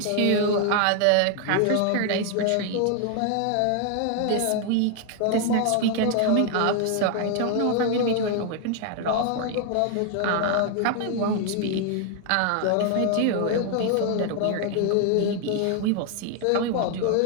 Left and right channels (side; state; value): both; different; correlation 0.00